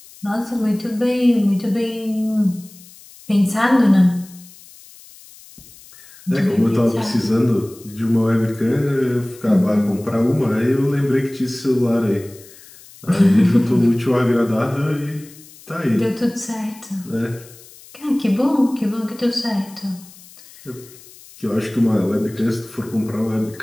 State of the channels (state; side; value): noise; left; hiss, 22 dB below the sound